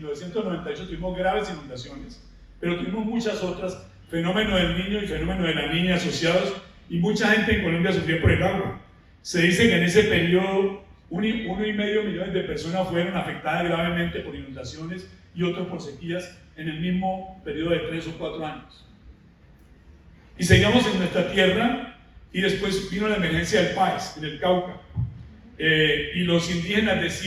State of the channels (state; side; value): identical; both; correlation 1.00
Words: tuvimos graves inundaciones, pero tuvimos muchas otras, fenómeno del niño y fenómeno de la niña asociados, y mucha gente en Colombia sufrió por el agua. Se dice que en ese periodo 1,5 millones de personas fueron afectadas gravemente por inundaciones y otros por sequías en el mismo periodo de 3 o 4 años. Y seguíamos en nuestra tierra y después vino la emergencia del Páez, en el Cauca. y los indígenas